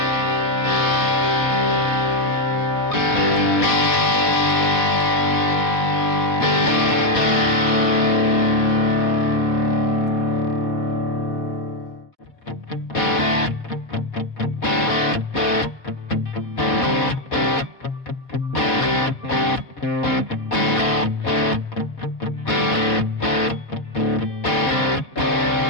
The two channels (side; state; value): right; late; 4.2 ms